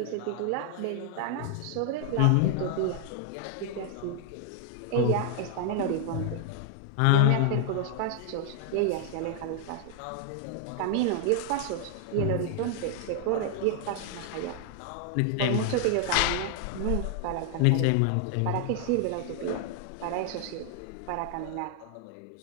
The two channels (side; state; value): both; different; correlation 0.00